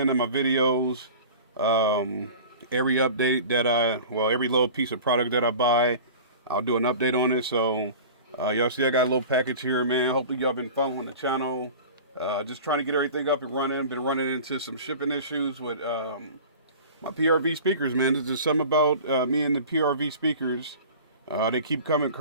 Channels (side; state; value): both; inverted; correlation -0.39